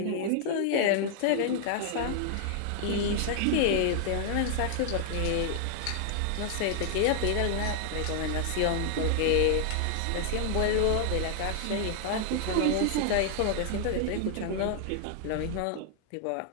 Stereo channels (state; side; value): different; both; correlation 0.00